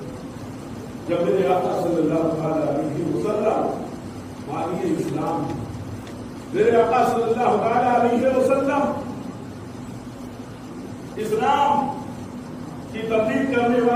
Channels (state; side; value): identical; both; correlation 1.00